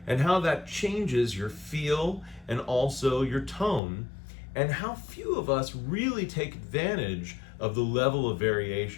and how that changes your feel and also your tone, and how few of us really take advantage of the level of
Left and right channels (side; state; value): right; drops out; at 3.8 s